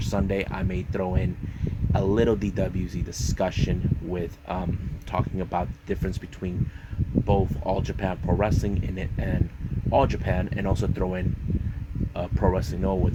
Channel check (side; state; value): both; identical; correlation 1.00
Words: I may throw in a little DWZ discussion with talking about the difference between both All Japan Pro Wrestling and All Japan, and also throw in Pro Wrestling Noah